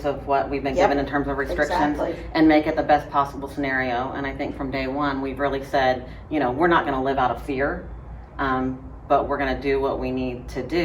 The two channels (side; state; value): both; identical; correlation 1.00